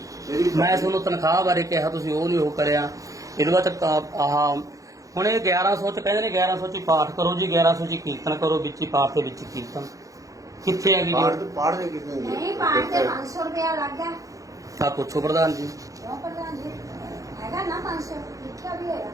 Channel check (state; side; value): late; left; 0.16 ms